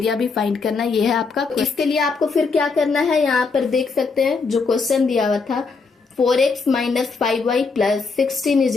भी फाइंड करना, ये है आपका। इसके लिए आपको फिर क्या करना है, यहाँ पर देख सकते हैं जो क्वेश्चन दिया हुआ था 4x minus 5y plus 16 is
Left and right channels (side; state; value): right; quieter; 4.6 dB